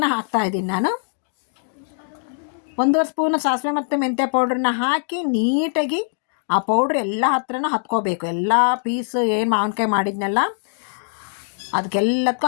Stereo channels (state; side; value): silent; right; digital silence